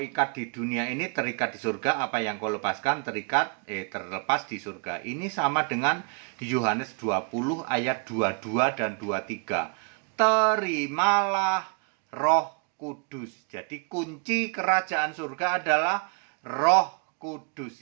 di dunia ini terikat di surga, apa yang kau lepaskan terlepas di surga. Ini sama dengan Yohanes 20 ayat 22 dan 23. Terimalah Roh Kudus. Jadi kunci kerajaan surga adalah Roh Kudus.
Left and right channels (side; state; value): left; quieter; 38.3 dB